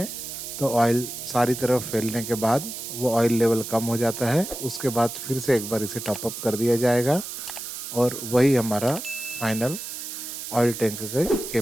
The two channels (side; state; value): right; noise; hiss, 8 dB below the sound